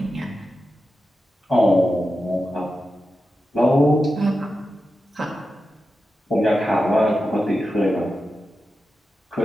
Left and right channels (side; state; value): both; normal; correlation 0.91